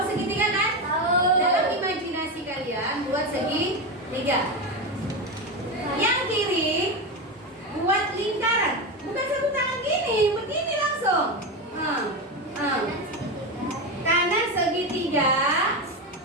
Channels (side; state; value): both; normal; correlation 0.16